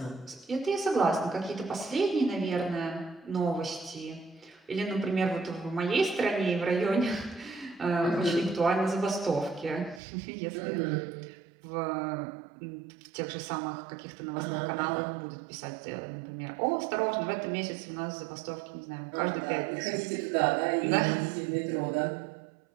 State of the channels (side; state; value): left; drops out; at 10.0 s